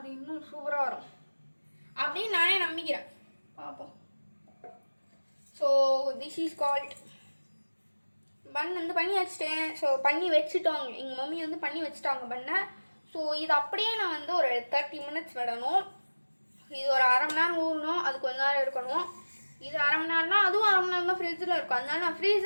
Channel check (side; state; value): both; inverted; correlation -1.00